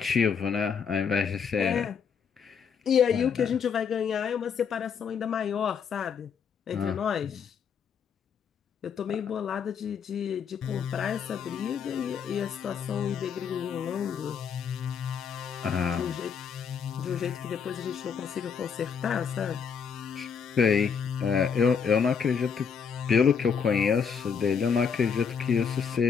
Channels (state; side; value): quieter; right; 6.6 dB